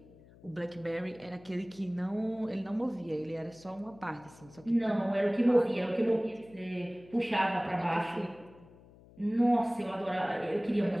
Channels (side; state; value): left; noise; hum, 23 dB below the sound